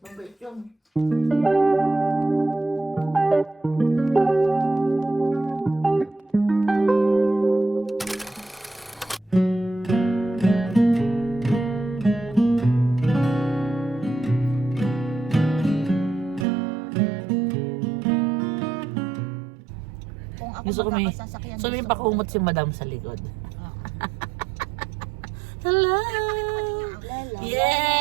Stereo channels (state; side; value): drops out; left; at 16.4 s